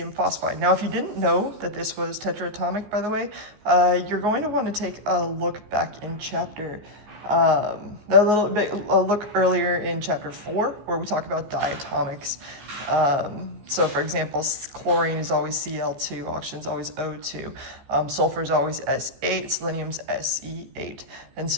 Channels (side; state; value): left; late; 14 ms